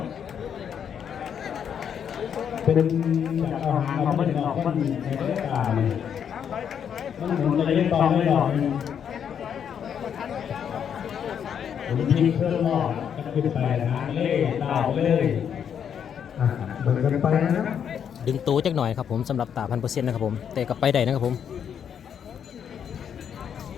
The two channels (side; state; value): right; quieter; 8.2 dB